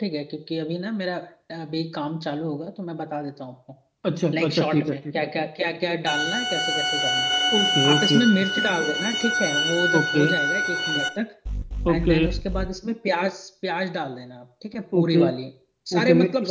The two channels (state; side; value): identical; both; correlation 1.00